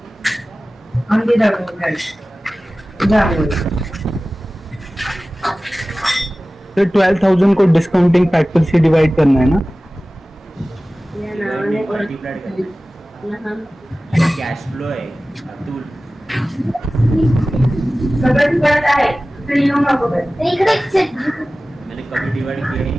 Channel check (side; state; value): both; normal; correlation 0.97